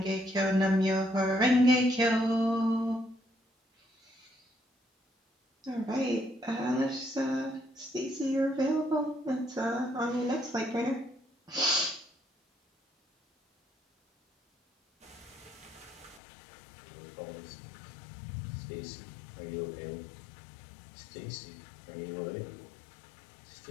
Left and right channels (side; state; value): right; drops out; at 16.2 s